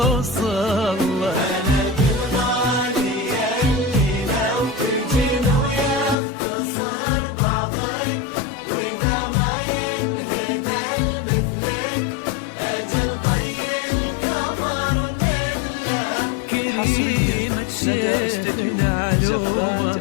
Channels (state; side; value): drops out; right; at 6.2 s